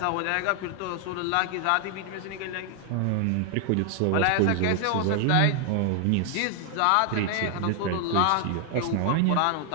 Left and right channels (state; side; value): different; both; correlation 0.00